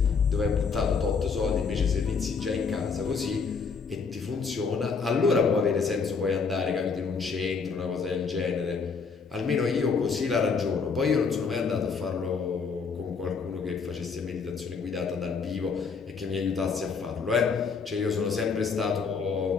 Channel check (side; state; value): right; quieter; 5.3 dB